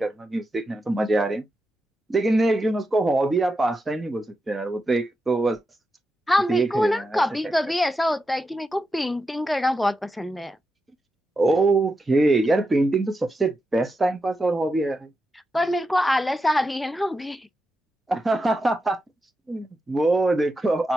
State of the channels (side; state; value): both; normal; correlation 0.87